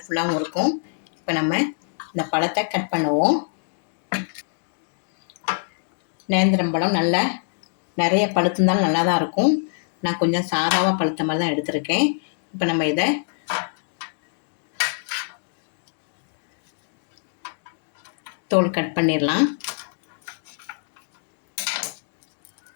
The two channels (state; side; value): silent; right; digital silence